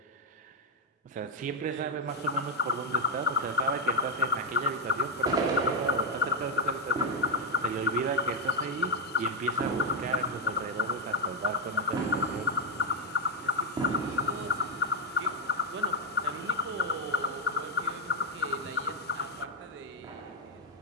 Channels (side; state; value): both; normal; correlation 0.03